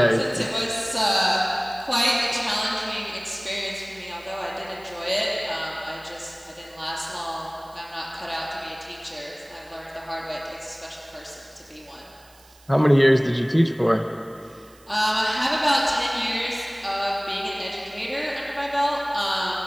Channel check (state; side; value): noise; right; hiss, 27 dB below the sound